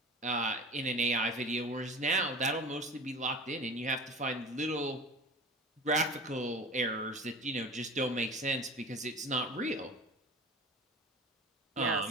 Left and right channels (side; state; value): both; normal; correlation 0.35